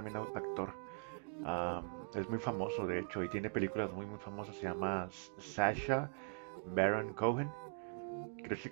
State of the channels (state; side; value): silent; left; digital silence